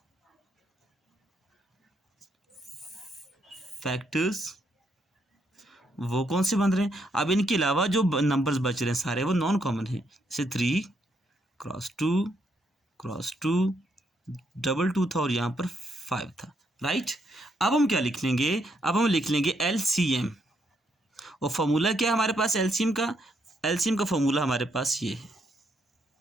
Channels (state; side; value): normal; both; correlation 0.76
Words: फैक्टर्स वो कौन से बन रहे हैं, अब इनके अलावा जो नंबर्स बच रहे हैं सारे वो नॉन कॉमन हैं, जैसे 3 × 2 × 2 डबल 2 था और यहाँ पर 5 था, राइट। अब हम क्या लिख लेंगे, अब हम लिख लेंगे LCM। और फॉर्मूला क्या है हमारे पास LCM का फॉर्मूला हमारे पास ये है,